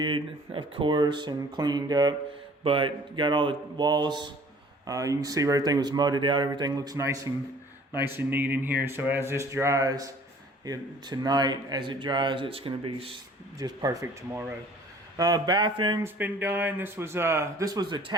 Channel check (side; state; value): both; normal; correlation 0.52